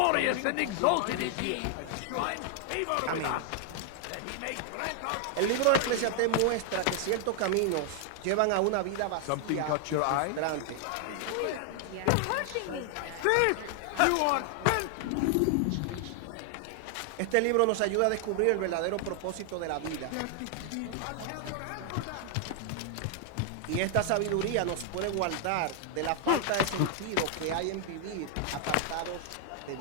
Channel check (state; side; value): different; both; correlation 0.00